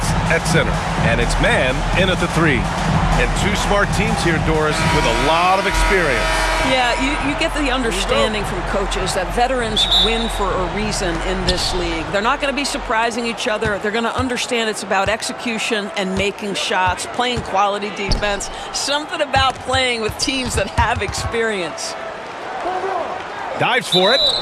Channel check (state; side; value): identical; both; correlation 1.00